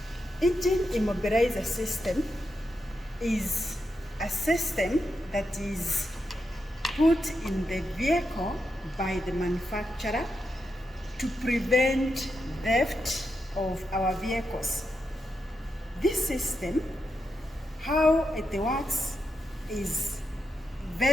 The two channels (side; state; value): both; normal; correlation 0.85